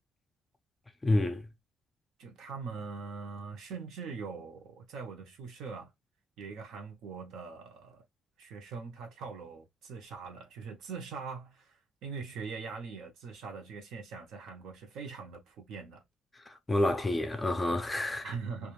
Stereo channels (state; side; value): normal; both; correlation 0.83